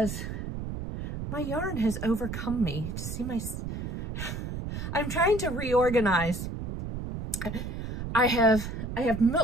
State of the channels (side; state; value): right; noise; rumble, 6 dB below the sound